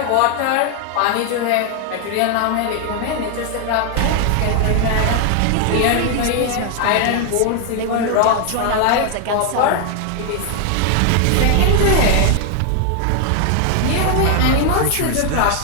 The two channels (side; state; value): both; different; correlation 0.00